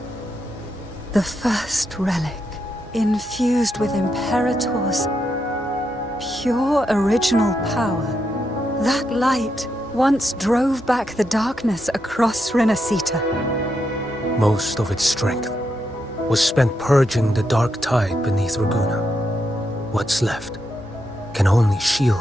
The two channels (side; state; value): both; normal; correlation 0.82